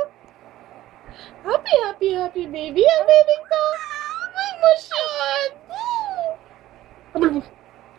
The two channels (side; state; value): left; quieter; 14.9 dB